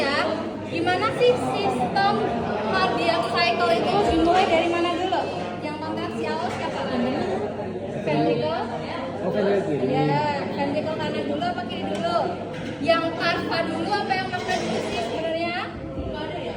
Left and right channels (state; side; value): identical; both; correlation 1.00